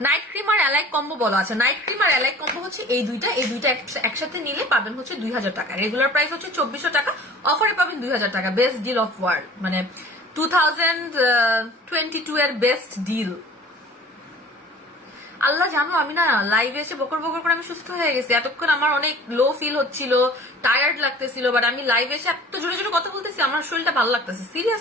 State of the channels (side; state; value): both; normal; correlation 0.46